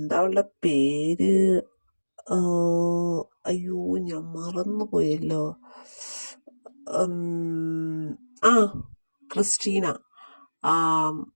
അവളുടെ പേര്? ആ, അയ്യോ, ഞാൻ മറന്നുപോയല്ലോ. ആ ക്രിസ്റ്റീന. ആ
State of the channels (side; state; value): both; inverted; correlation -1.00